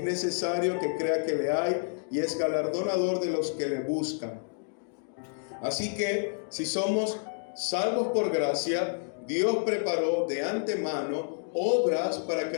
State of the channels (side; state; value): right; silent; digital silence